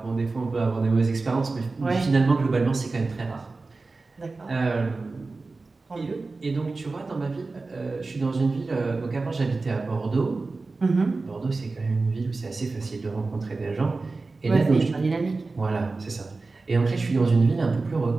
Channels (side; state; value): left; quieter; 3.7 dB